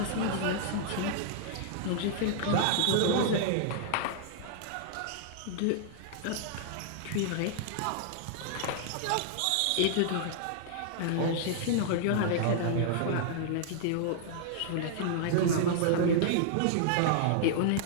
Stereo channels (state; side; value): different; both; correlation -0.01